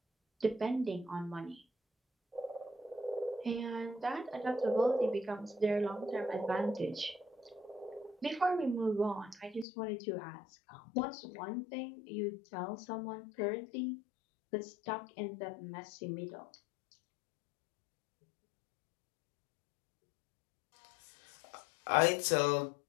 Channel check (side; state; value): right; drops out; at 9.7 s